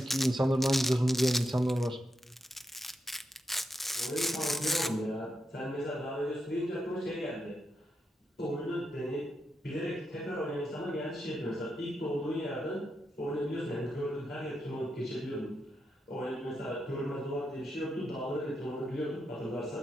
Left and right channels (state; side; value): normal; both; correlation 0.84